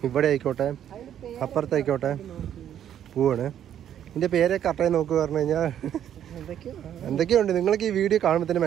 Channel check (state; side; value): quieter; left; 10.2 dB